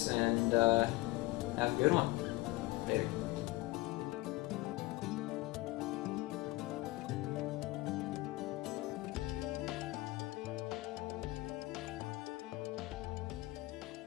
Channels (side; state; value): right; quieter; 20.1 dB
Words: and have a good one.